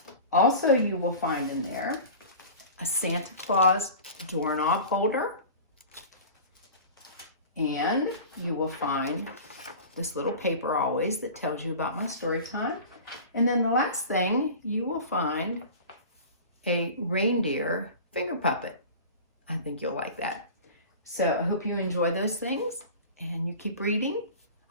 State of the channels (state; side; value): inverted; both; correlation -0.37